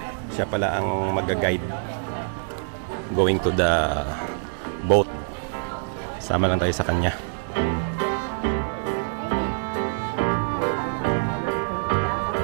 Siya pala ang mag-guide going to the boat. Sama lang tayo sa kanya.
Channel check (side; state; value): left; silent; digital silence